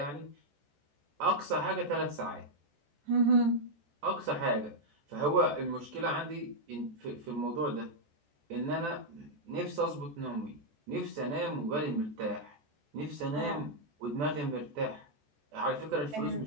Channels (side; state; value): left; late; 14 ms